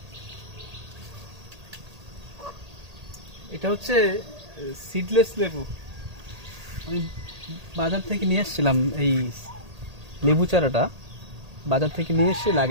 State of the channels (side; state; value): left; late; 1.8 ms